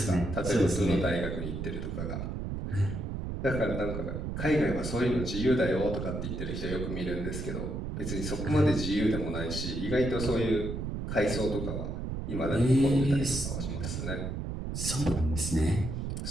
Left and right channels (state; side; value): noise; right; rumble, 4 dB below the sound